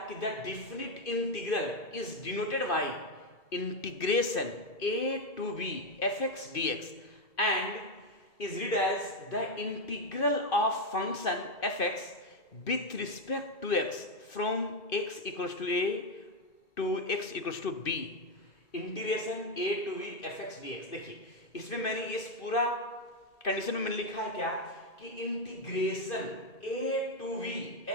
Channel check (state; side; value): late; right; 2.6 ms